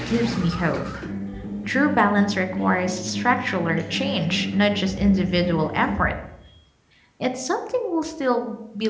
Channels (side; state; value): both; identical; correlation 1.00